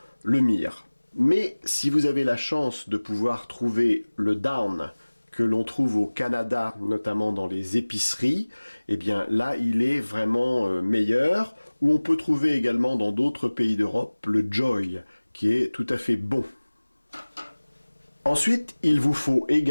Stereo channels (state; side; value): inverted; both; correlation -1.00